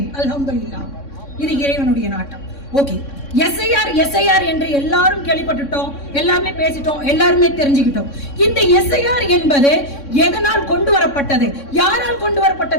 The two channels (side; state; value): right; late; 3.6 ms